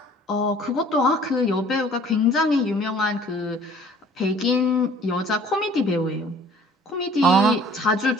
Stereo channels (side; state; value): both; normal; correlation 0.52